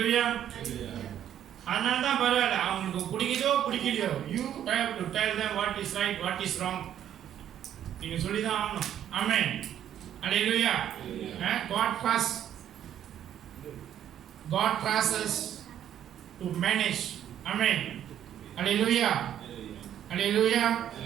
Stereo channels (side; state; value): left; quieter; 10.4 dB